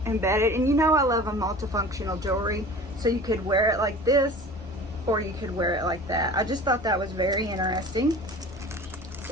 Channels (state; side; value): normal; both; correlation 0.40